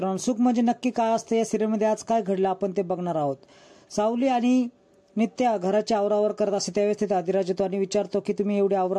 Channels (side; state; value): both; identical; correlation 1.00